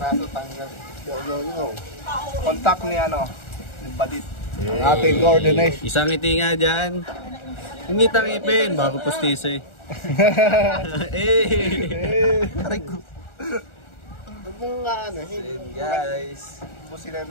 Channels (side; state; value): right; late; 1.4 ms